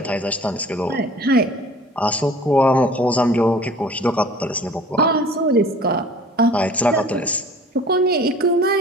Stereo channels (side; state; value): both; normal; correlation 0.47